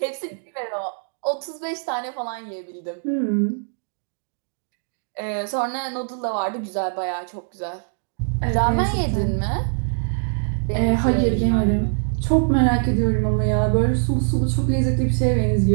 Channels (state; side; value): silent; left; digital silence